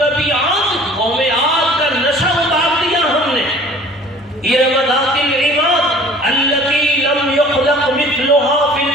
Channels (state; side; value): normal; both; correlation 0.49